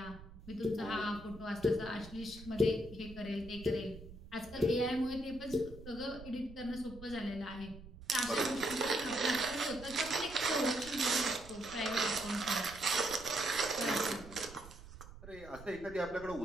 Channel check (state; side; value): noise; right; rumble, 16 dB below the sound